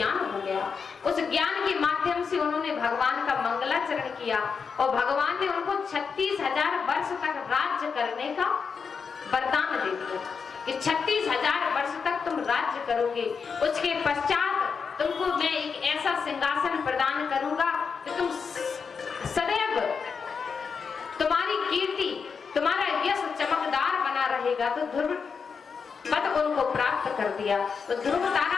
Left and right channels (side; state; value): right; quieter; 5.7 dB